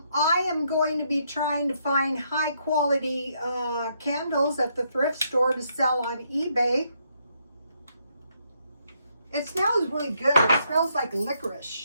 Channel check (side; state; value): both; inverted; correlation -0.75